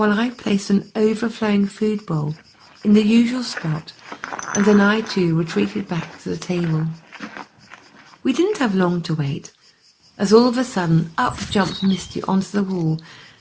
I placed an overflowing food bowl in the usual spot, and then I too retreated back to the table. We didn't have long to wait, as all of a sudden up jumped Misty onto the wall,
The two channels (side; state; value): both; identical; correlation 1.00